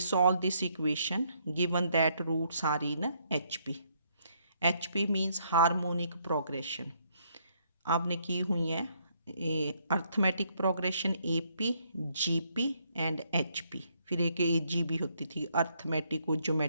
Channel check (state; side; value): inverted; both; correlation -0.71